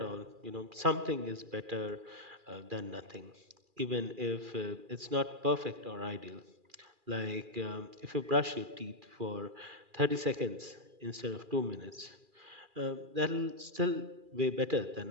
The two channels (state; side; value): late; left; 2.4 ms